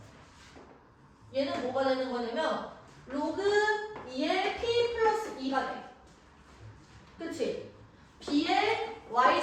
얘는 뭐가 되는 거냐면 로그 2의 P 플러스 2가 돼. 그치? B의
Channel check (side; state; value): both; identical; correlation 1.00